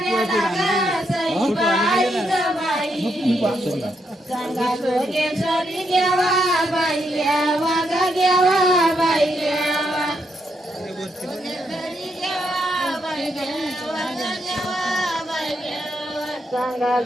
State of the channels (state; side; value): normal; both; correlation 0.79